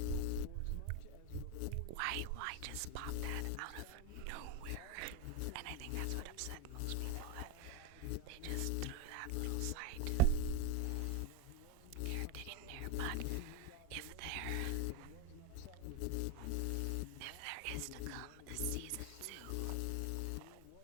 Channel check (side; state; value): both; different; correlation 0.02